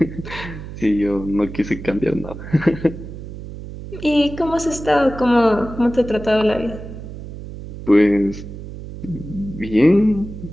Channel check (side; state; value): right; noise; hum, 11 dB below the sound